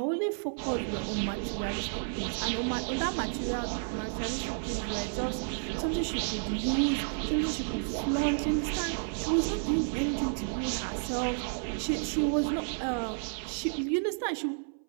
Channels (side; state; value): left; silent; 57 dB below the other